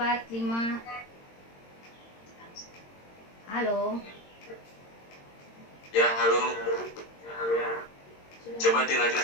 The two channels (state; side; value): late; right; 22 ms